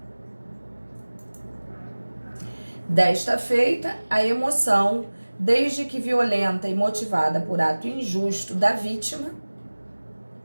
Desta feita, a emoção, desde que violenta e motivada por ato injusto da vítima,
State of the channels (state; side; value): inverted; both; correlation -1.00